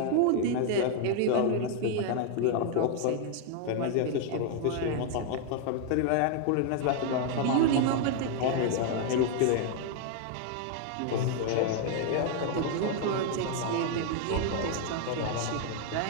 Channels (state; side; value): different; both; correlation 0.00